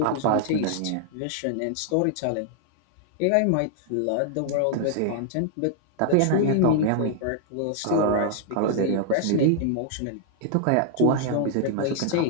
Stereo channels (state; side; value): different; both; correlation -0.01